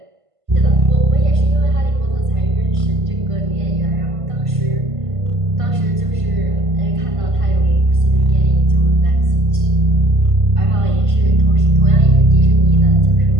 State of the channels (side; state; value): left; late; 1.5 ms